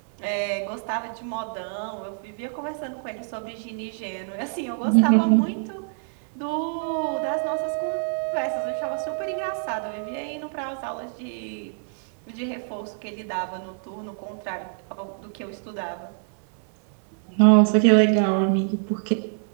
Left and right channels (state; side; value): silent; left; 61 dB below the other